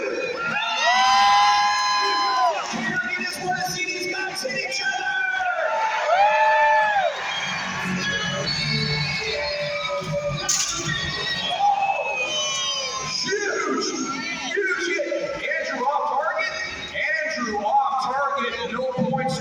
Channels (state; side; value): identical; both; correlation 1.00